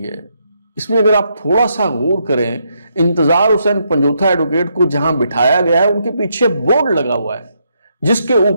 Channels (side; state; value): both; inverted; correlation -0.78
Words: है इसमें अगर आप थोड़ा सा गौर करें, इंतजार हुसैन पंजोथा एडवोकेट को जहां बिठाया गया है उनके पीछे बोर्ड लगा हुआ है जिसके